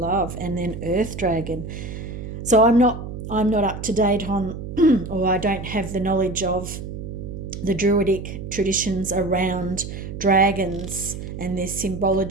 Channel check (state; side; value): noise; right; hum, 8 dB below the sound